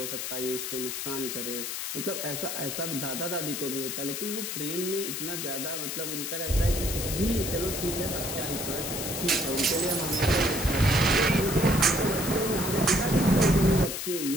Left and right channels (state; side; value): noise; left; hiss, 4 dB below the sound